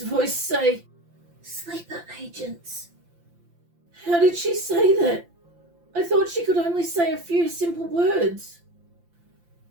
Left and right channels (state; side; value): late; left; 5.8 ms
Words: voice say, "Sleeper agents." How did she say that? I thought she could only say a few simple words.